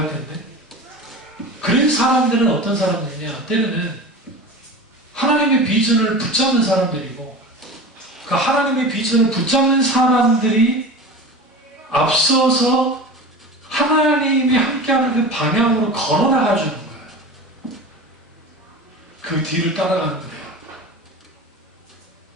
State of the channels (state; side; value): normal; both; correlation 0.32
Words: 텐데 그런 사람들은 어떤 사람들이냐? 때로는 하나님의 비전을 붙잡는 사람들이고 그 하나님의 비전을 붙잡는 사람들이 앞서서 하나님이 함께하는 그 방향으로 걸어나가주는 거예요. 그 뒤를 따라가는 거예요.